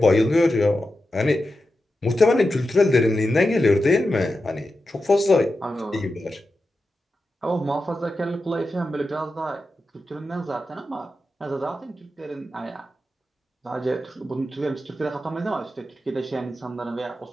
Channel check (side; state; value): both; normal; correlation 0.90